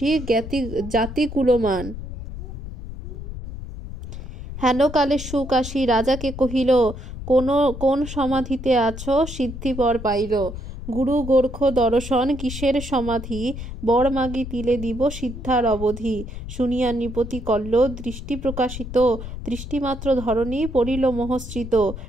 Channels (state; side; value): noise; left; rumble, 10 dB below the sound